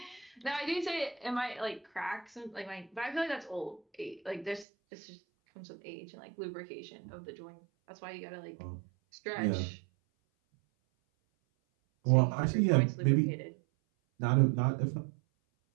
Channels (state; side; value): drops out; left; at 4.7 s